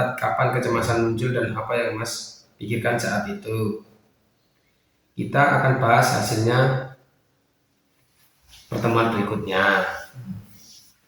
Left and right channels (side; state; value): both; identical; correlation 1.00